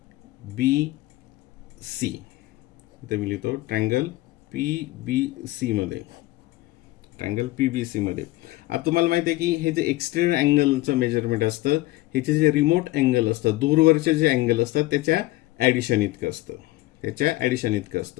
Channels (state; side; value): quieter; right; 18.4 dB